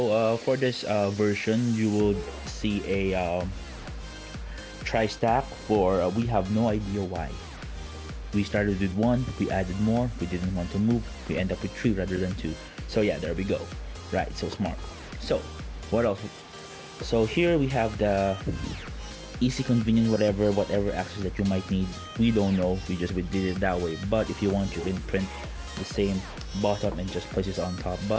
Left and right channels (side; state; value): both; identical; correlation 1.00